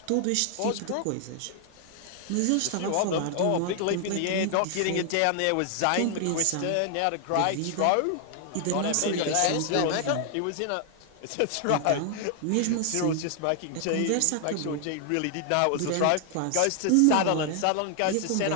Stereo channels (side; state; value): both; different; correlation 0.00